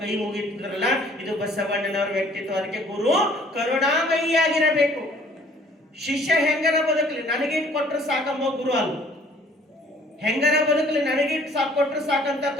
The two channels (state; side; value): normal; both; correlation 0.57